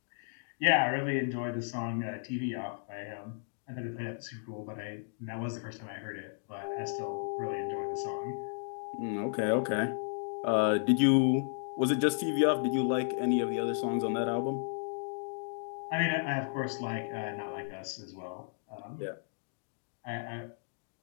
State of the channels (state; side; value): silent; right; digital silence